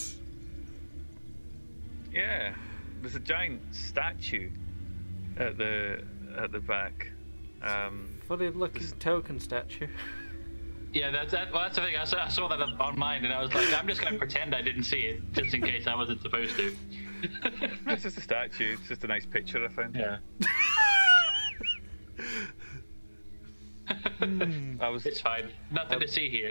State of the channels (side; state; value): both; inverted; correlation -1.00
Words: Yeah, there's a giant statue at the back. Funny looking token statue. Yeah, that's the thing. I saw that on mine, and I was like, I'm just going to pretend I didn't see it, just in case I wasn't supposed to. It's just a statue. It's just a nice picture I found. Yeah. It's fine. Nothing to see